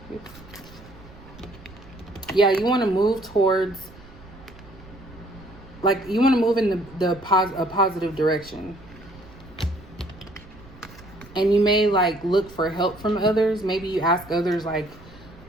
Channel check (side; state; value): right; noise; rumble, 20 dB below the sound